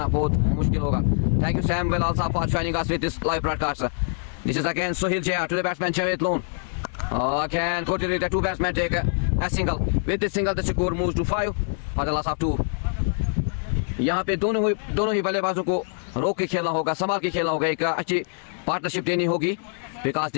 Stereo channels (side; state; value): right; silent; digital silence